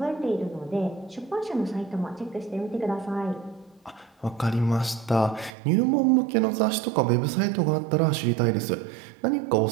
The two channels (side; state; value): left; drops out; at 5.5 s